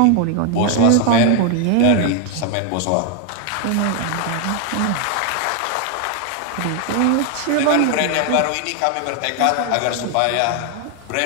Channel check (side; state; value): both; different; correlation 0.00